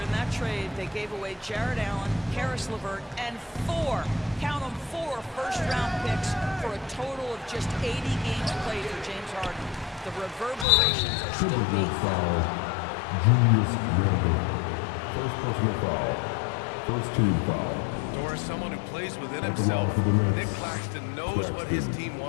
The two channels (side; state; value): right; drops out; at 10.7 s